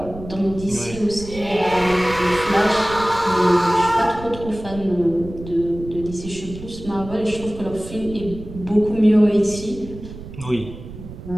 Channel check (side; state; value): right; noise; rumble, 13 dB below the sound